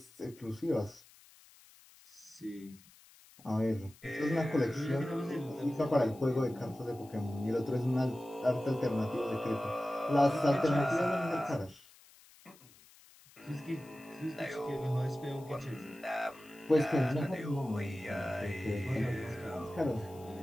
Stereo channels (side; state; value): left; noise; hiss, 25 dB below the sound